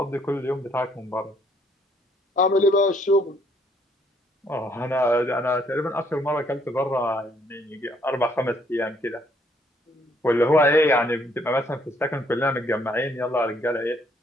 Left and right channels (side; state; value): both; normal; correlation 0.67